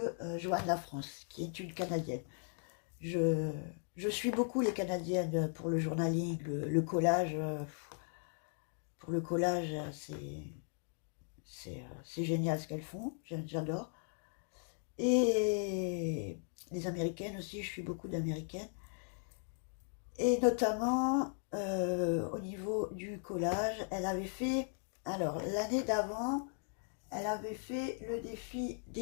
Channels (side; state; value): right; silent; 53 dB below the other